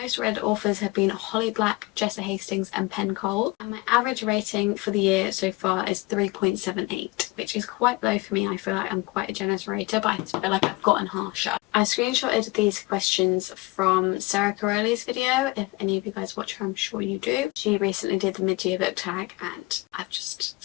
read authors have been Holly Black, Jessa Hastings and Penn Cole. And my average rating for the year so far is 3.78, which is quite low for me. I feel like I'm quite a generous rater, but I feel like I've gotten harsher. I screenshotted these questions from Sarah Caroli's video. If any of you guys watch her, I'm sure you do. She recently did the mid-year book tag and I've just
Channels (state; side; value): quieter; right; 22.9 dB